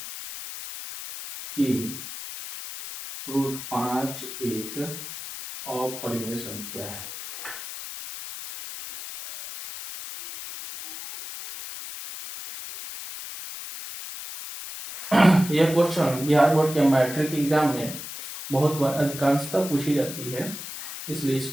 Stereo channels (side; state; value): left; noise; hiss, 10 dB below the sound